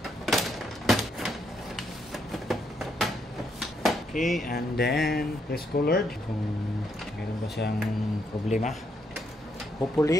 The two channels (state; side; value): normal; both; correlation 0.76